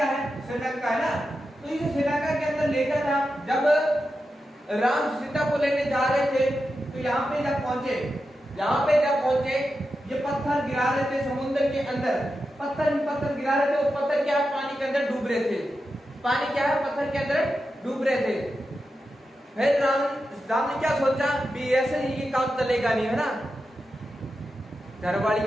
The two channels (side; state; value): both; normal; correlation 0.89